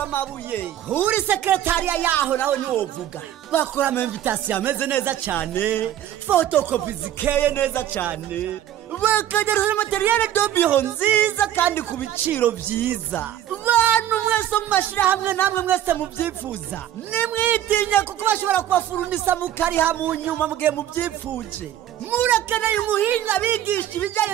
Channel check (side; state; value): left; quieter; 11.8 dB